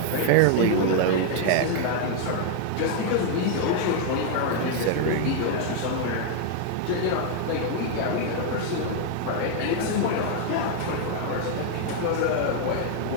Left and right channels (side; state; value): both; different; correlation 0.00